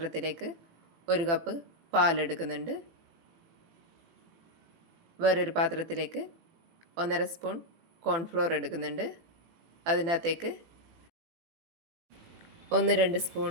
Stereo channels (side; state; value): left; late; 18 ms